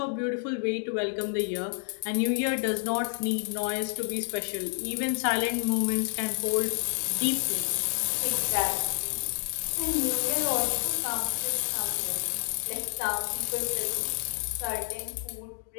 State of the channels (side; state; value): right; silent; 56 dB below the other